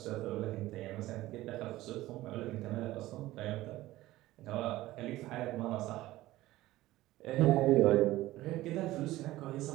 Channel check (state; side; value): quieter; left; 16.7 dB